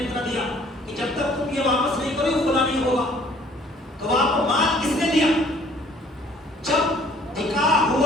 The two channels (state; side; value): normal; both; correlation 0.57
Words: کر دیا کہ جب تک تم یہ واپس نہیں کرو خلا نہیں ہوگا. تو آپ کو مال کس نے دیا؟ جب نکاح